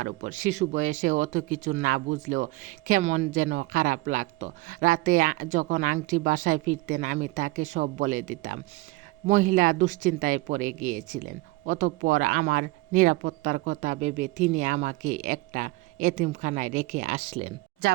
উপর। শিশু বয়সে অত কিছু না বুঝলেও কেমন যেন খারাপ লাগতো। রাতে যখন আংটি বাসায় ফিরতেন, আমি তাকে সব বলে দিতাম। মহিলা দুশ্চিন্তায় পড়ে গিয়েছিলেন। অতঃপর আমার নিরাপত্তার কথা ভেবে তিনি আমাকে একটা এতিমখানায় রেখে আসলেন।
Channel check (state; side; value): quieter; left; 21.1 dB